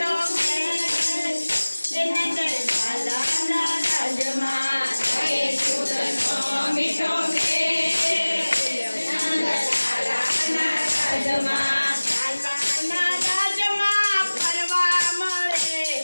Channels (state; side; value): inverted; both; correlation -1.00